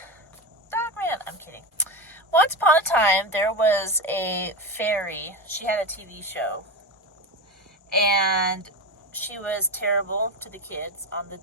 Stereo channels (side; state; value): both; normal; correlation 0.18